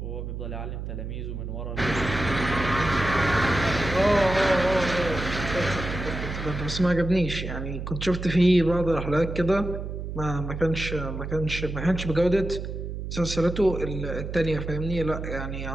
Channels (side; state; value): right; noise; hum, 6 dB below the sound